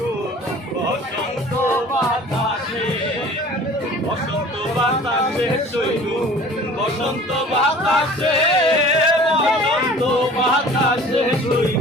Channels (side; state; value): both; normal; correlation 0.46